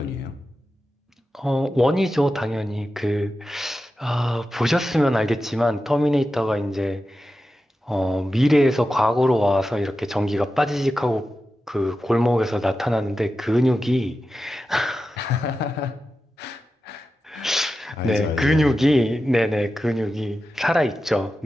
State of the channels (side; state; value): both; normal; correlation 0.92